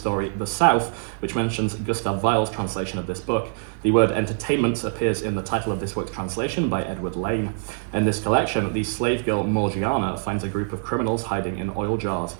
The South, which mentions Gustav Weil's translation of this book. The word entertainment appears in the title of this work's translation by Edward Lane. In this collection, the slave girl Morgiana finds a group of criminals hiding in oil jars.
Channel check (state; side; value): silent; left; 62 dB below the other